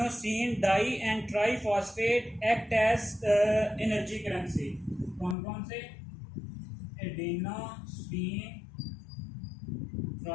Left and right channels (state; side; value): drops out; right; at 5.4 s